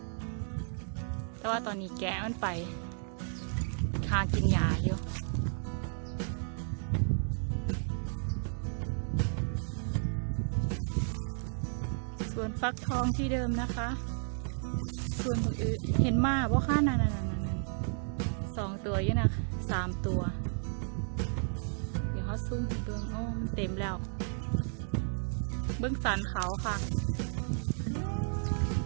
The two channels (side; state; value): left; silent; 56 dB below the other